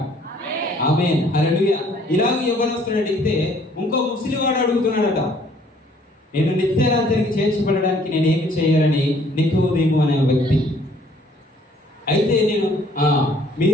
ఆమేన్, హల్లెలూయా. ఇలాగ యవ్వనస్తుడు అడిగితే ఇంకో ముసలివాడు అడుగుతున్నాడట, నేను నిత్యరాజ్యానికి చేర్చబడడానికి నేను ఏమి చేయాలని నికోదేము అనే వ్యక్తి. అయితే నేను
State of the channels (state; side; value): normal; both; correlation 0.60